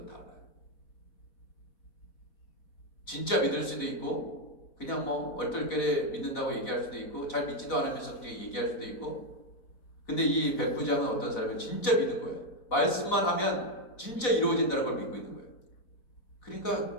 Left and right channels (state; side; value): late; right; 4.1 ms